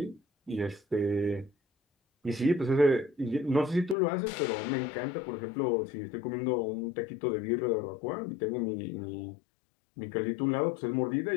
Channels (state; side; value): drops out; right; at 4.0 s